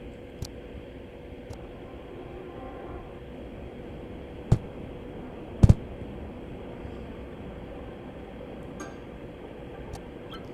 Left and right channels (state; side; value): identical; both; correlation 1.00